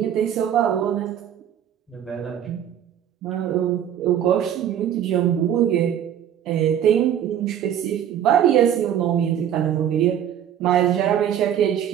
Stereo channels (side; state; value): left; quieter; 9.9 dB